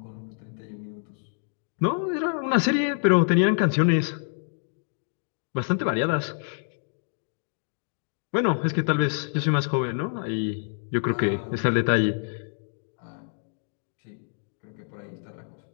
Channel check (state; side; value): silent; right; digital silence